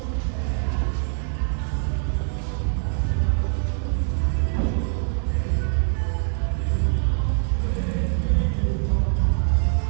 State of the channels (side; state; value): left; silent; 63 dB below the other